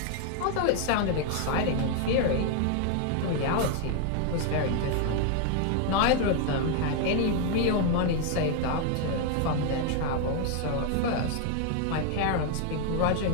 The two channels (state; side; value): different; both; correlation 0.00